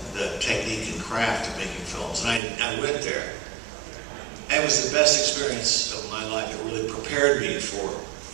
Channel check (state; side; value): drops out; left; at 2.4 s